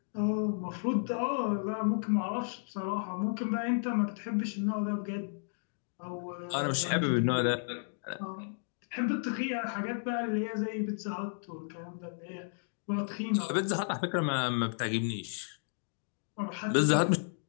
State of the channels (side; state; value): right; silent; digital silence